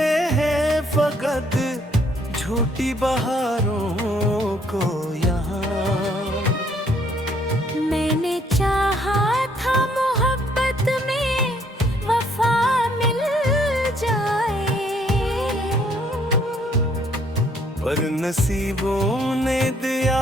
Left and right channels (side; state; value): both; normal; correlation 0.66